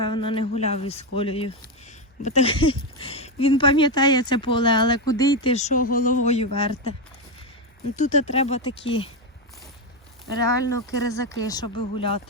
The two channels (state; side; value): normal; both; correlation 0.09